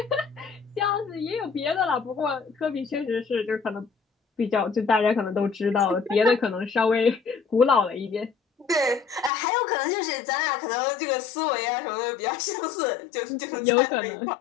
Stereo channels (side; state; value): right; drops out; at 9.3 s